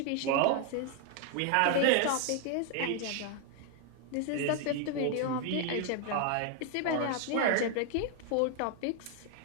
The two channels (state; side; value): different; both; correlation 0.00